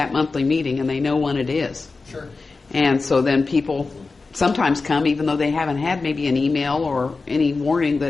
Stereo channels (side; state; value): right; quieter; 4.0 dB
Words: monthly meeting and they know when it is. Sure. And so then people sometimes come even though they haven't had maybe an email or any warning